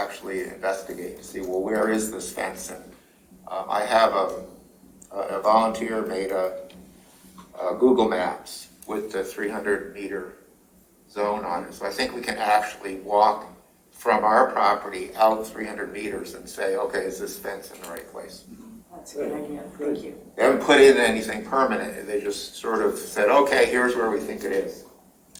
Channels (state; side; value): identical; both; correlation 1.00